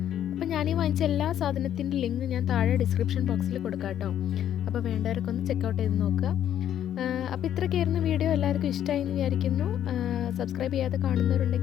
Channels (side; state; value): right; quieter; 10.5 dB